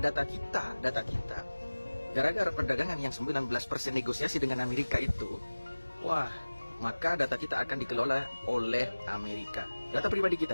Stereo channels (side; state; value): both; inverted; correlation -1.00